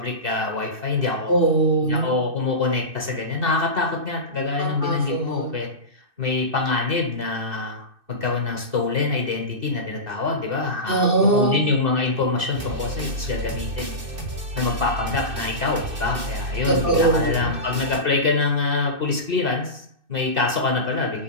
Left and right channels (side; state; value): left; late; 2.6 ms